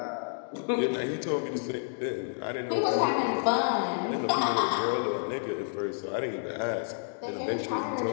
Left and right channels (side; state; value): right; silent; digital silence